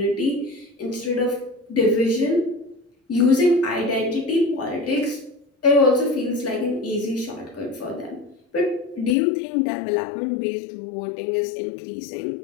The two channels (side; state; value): right; drops out; at 9.2 s